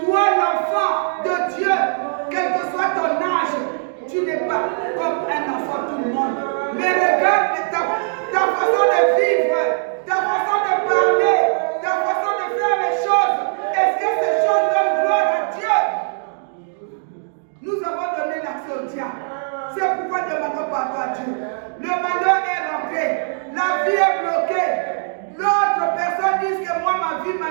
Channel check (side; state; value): left; silent; digital silence